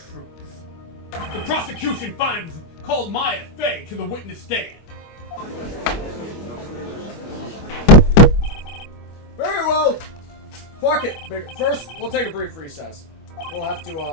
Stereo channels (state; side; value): late; right; 25 ms